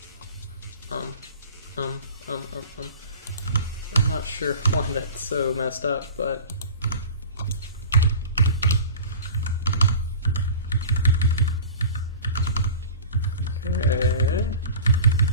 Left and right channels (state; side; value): inverted; both; correlation -0.38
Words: I'm not sure why that's so messed up, but okay,